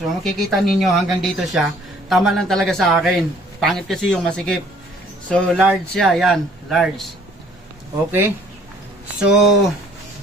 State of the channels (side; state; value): both; normal; correlation 0.58